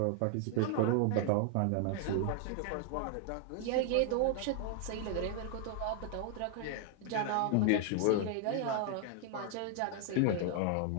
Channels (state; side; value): different; both; correlation 0.00